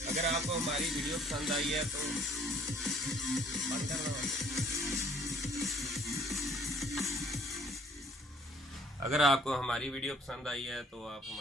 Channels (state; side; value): normal; both; correlation 0.58